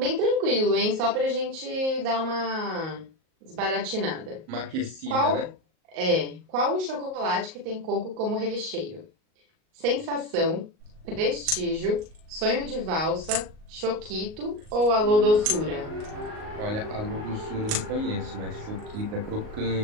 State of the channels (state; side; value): late; left; 38 ms